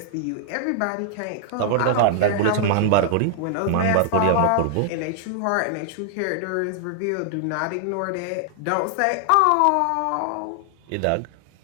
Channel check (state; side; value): different; both; correlation 0.00